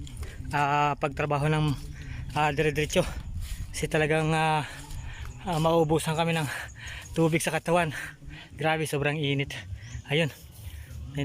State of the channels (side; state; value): both; identical; correlation 1.00